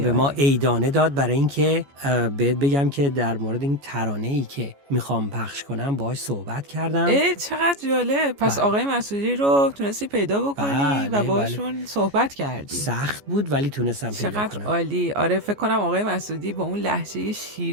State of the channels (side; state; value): left; late; 14 ms